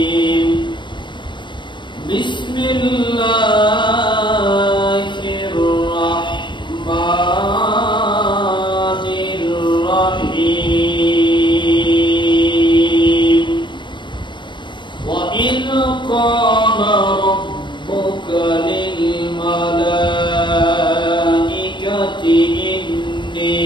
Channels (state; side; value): late; right; 0.23 ms